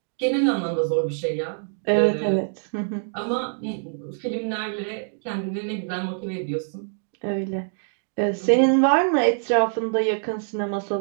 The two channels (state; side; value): silent; left; digital silence